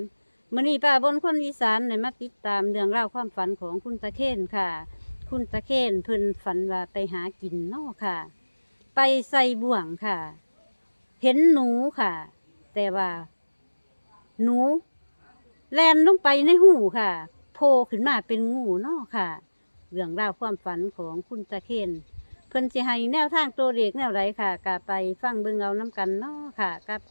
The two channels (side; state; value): both; inverted; correlation -1.00